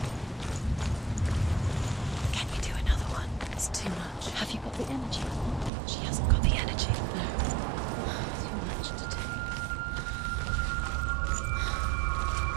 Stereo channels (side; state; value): left; drops out; at 5.7 s